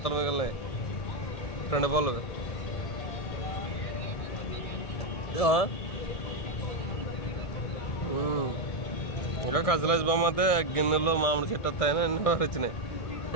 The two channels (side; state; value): right; late; 1.6 ms